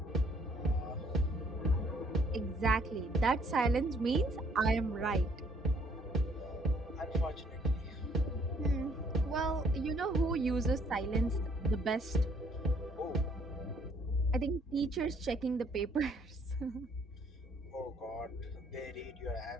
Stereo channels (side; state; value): both; normal; correlation 0.65